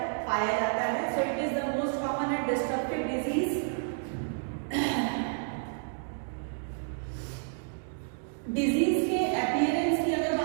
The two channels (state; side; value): silent; left; digital silence